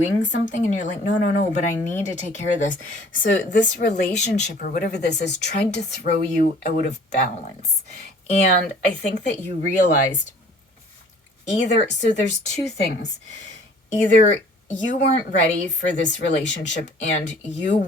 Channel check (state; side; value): normal; both; correlation 0.52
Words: something, and you're like, no, but I need to take care of this. So this relationship or whatever this is tried to throw you out of balance. And I think that you realized so there's two things. Either you weren't ready for this relationship and you